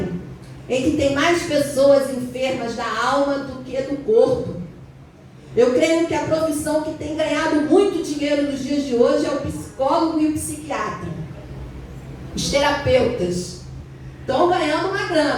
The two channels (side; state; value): both; identical; correlation 1.00